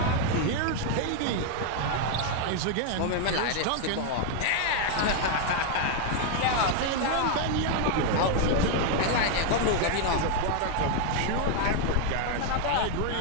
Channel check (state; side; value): different; both; correlation 0.01